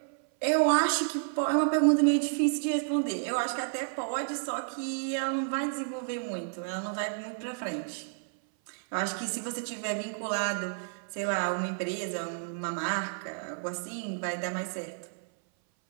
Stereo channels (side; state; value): left; silent; 57 dB below the other